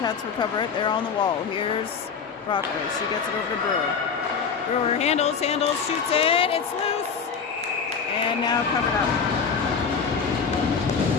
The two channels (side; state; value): right; quieter; 6.1 dB